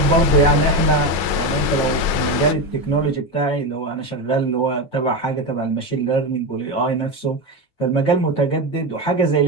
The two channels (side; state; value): right; late; 9.1 ms